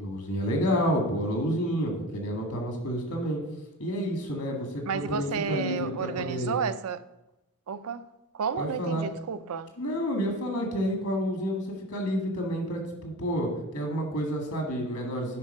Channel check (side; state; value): both; normal; correlation 0.30